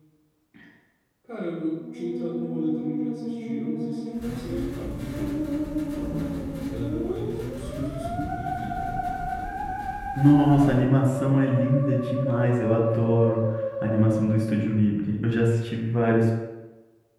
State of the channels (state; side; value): identical; both; correlation 1.00